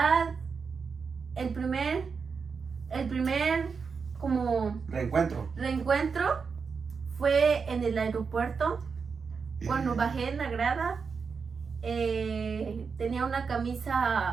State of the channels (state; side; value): quieter; left; 5.4 dB